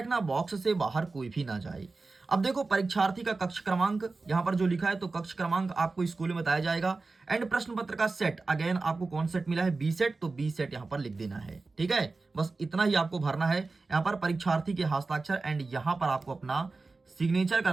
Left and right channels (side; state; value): left; quieter; 3.7 dB